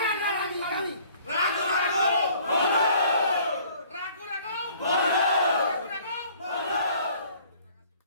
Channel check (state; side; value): inverted; both; correlation -0.55